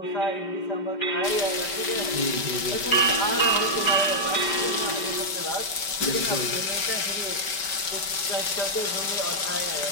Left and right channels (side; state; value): right; late; 5.1 ms